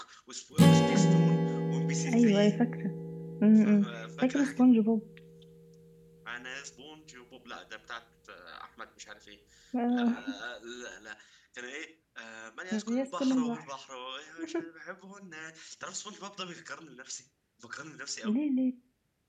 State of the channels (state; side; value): identical; both; correlation 1.00